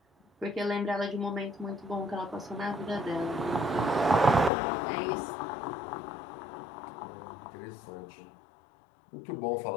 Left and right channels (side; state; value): right; drops out; at 4.5 s